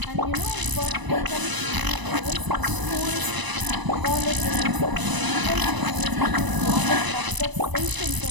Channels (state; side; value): late; left; 1.0 ms